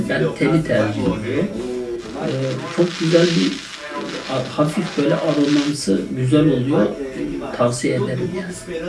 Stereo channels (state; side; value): identical; both; correlation 1.00